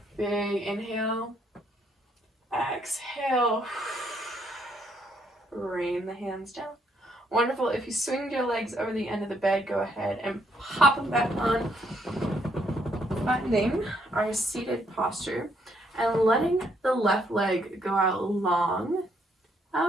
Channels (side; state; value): both; normal; correlation 0.71